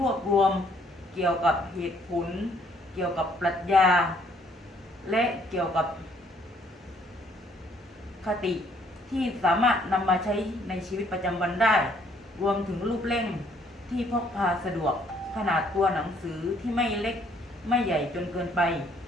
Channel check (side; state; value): both; normal; correlation 0.65